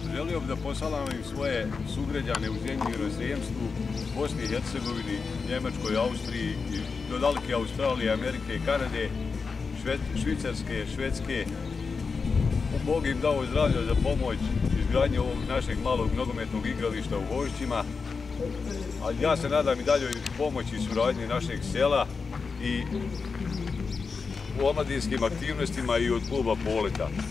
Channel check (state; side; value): quieter; right; 4.9 dB